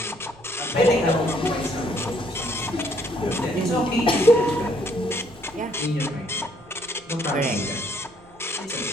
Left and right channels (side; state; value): right; noise; rumble, 26 dB below the sound